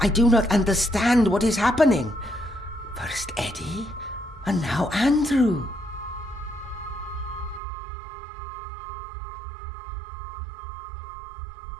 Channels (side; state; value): left; drops out; at 7.6 s